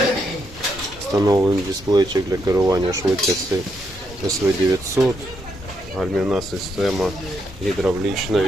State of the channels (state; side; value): normal; both; correlation 0.78